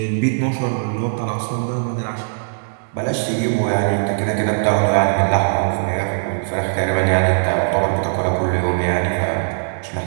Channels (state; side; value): silent; left; digital silence